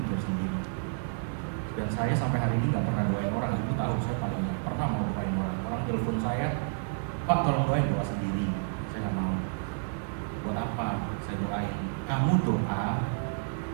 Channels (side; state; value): left; silent; digital silence